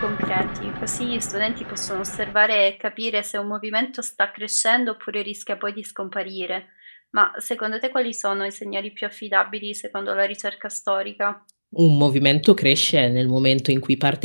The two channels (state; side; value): inverted; both; correlation -1.00